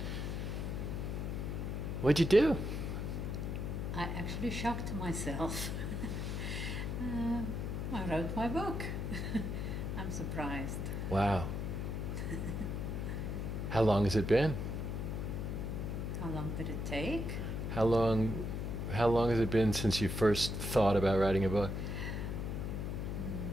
What'd you do? I actually shocked myself. I wrote my book. I'm surprised. Wow. How long has it been? How long did it take? How long has it been since you first thought about writing a book?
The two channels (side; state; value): left; noise; hum, 2 dB below the sound